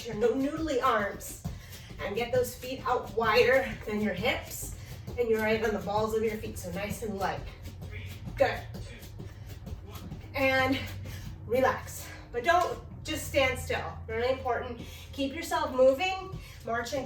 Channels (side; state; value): both; identical; correlation 1.00